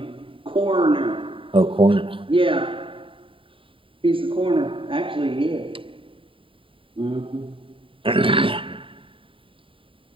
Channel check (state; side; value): late; left; 0.25 ms